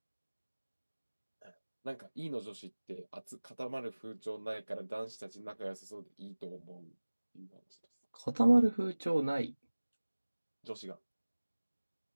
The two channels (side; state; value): both; inverted; correlation -1.00